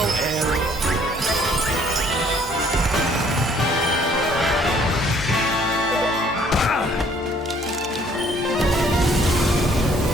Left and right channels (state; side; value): normal; both; correlation 0.61